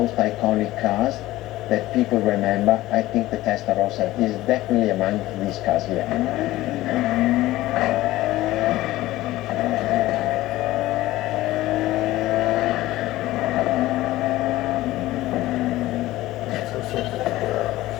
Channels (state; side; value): quieter; right; 16.7 dB